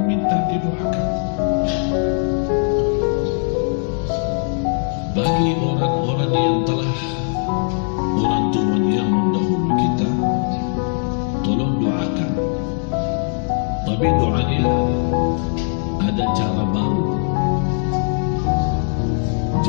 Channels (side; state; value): right; silent; 60 dB below the other